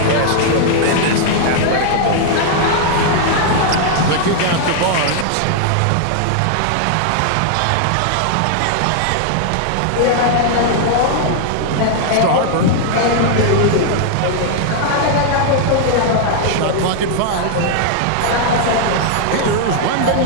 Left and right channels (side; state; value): both; different; correlation 0.00